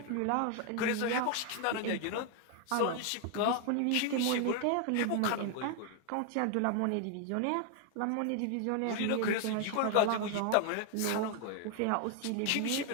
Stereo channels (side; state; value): both; different; correlation 0.00